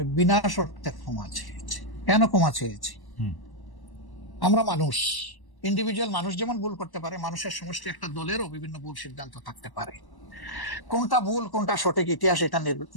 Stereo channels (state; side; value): late; right; 1.1 ms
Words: বিনা শর্তে ক্ষমা চেয়েছি। কেন ক্ষমা চেয়েছি? আমরা মানুষ, ইন্ডিভিজুয়াল মানুষ যেমন ভুল করতে পারে, মানুষের সমষ্টি একটা দলেরও বিভিন্ন ভুল সিদ্ধান্ত থাকতে পারে। কোনটা ভুল কোনটা সঠিক ইতিহাস এটা